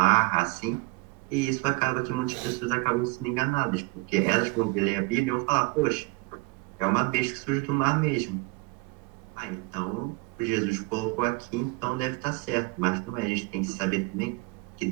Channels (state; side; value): quieter; left; 25.4 dB